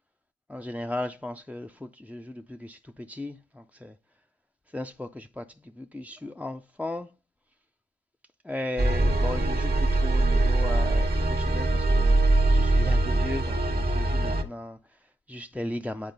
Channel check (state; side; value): normal; both; correlation 0.88